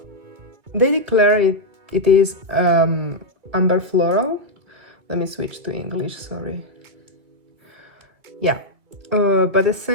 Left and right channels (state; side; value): late; left; 2.1 ms